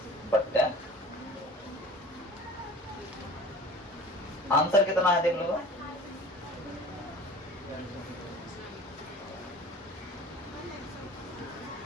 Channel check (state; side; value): normal; both; correlation 0.42